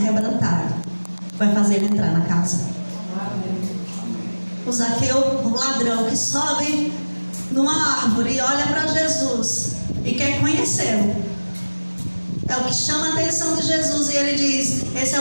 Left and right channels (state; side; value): inverted; both; correlation -1.00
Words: vai fazer ele entrar na casa. O Zaqueu, o ladrão que sobe numa árvore e olha para Jesus e quer conhecê-lo, é o que chama a atenção de Jesus. E ele diz: esse é